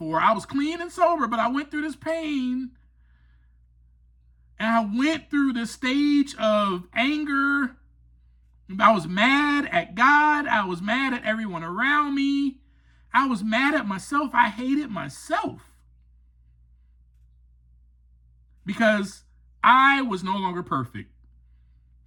I was clean and sober, but I went through this pain. And I went through this stage of anger. I was mad at God. I was mad at everyone around me. I was mad at myself. I hated myself because I was no longer perfect.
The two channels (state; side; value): identical; both; correlation 1.00